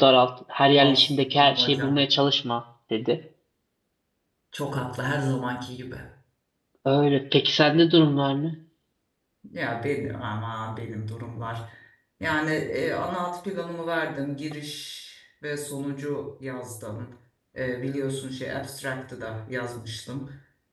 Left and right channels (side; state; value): both; identical; correlation 1.00